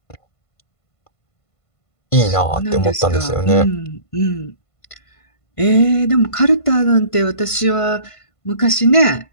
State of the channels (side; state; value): right; late; 1.5 ms